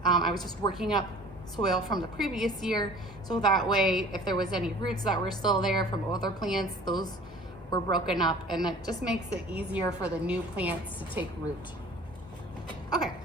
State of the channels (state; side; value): normal; both; correlation 0.47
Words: I was just working up soil from the previous year, so that way if there was any roots that were still there from other plants, those were broken up, and that just makes it easier for the new plants to take root. Okay,